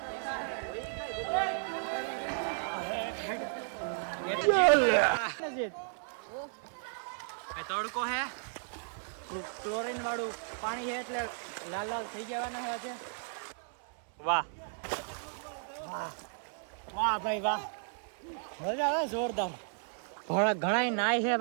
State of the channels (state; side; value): silent; left; 55 dB below the other